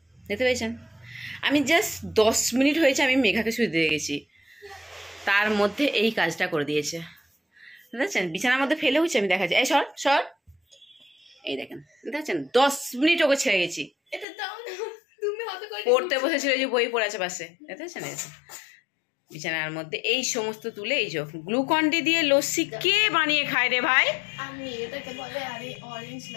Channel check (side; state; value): right; drops out; at 14.2 s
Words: দেখতে পেয়েছেন? আমি জাস্ট 10 মিনিট হয়েছে আমি মেঘাকে শুয়ে দিয়ে গেছি, তার মধ্যে এই কাজটা করে দিয়েছে। দেখছেন বিছানার মধ্যে ফেলে হচ্ছে, আমি দেখাচ্ছি। এই সর সর, এই দেখেন দেখছেন 10 মিনিট ওকে ছেড়ে গেছি। পড়তে বসেছিল, যে বই পড়ে আছে পাশে, দেখতেছেন? বিছানার মধ্যে এই সমস্ত তুলে এই যে গ্লুকন-ডি দিয়ে লস্যি কে বানিয়ে খায় রে ভাই? আমি, এটাকে বলে অরেঞ্জ